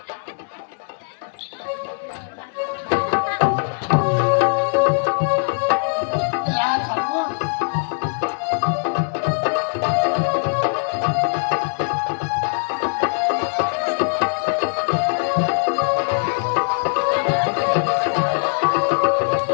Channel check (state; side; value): silent; right; 61 dB below the other